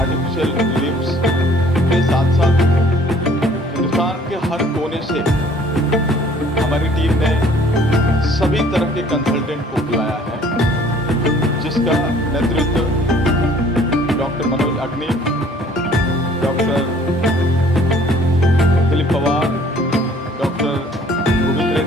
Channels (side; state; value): both; normal; correlation 0.56